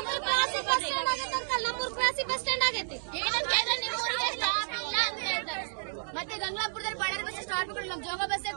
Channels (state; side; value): silent; left; digital silence